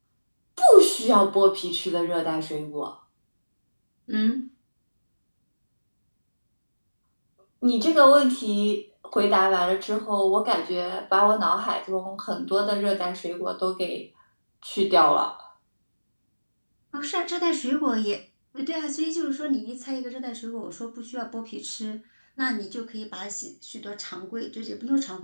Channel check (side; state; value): both; inverted; correlation -1.00